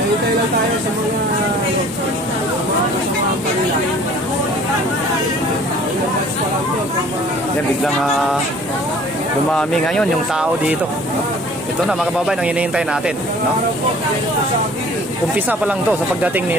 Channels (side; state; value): both; normal; correlation 0.51